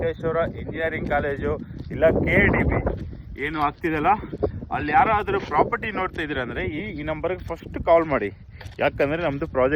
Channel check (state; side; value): identical; both; correlation 1.00